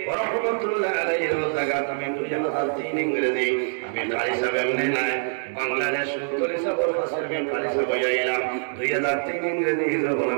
রহমাতুল্লাহ আলাইহির জায়গাত আমি 2003 ইংরেজি আমি কারি সাহেব এমনি না বাংলাদেশ ফুলতলি সাহেবের কাছে আমি কারি সাহেব হইলাম 2003 ইংরেজি যখন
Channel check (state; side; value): silent; left; digital silence